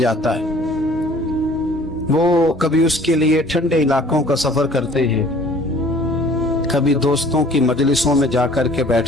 है। वो कभी उसके लिए ठंडे इलाकों का सफर करते हैं, कभी दोस्तों की मजलिसों में जाकर के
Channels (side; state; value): both; normal; correlation 0.52